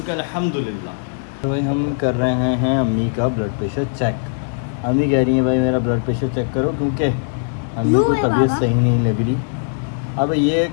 हैं अल्हम्दुलिल्लाह। तो भाई हम कर रहे हैं अम्मी का ब्लड प्रेशर चेक। अम्मी कह रही है भाई मेरा ब्लड प्रेशर चेक करो, क्योंकि अम्मी को तबीयत सही नहीं लग रही। अब ये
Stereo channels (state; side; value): silent; right; digital silence